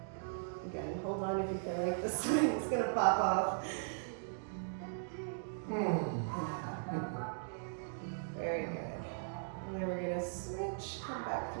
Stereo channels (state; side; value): silent; left; digital silence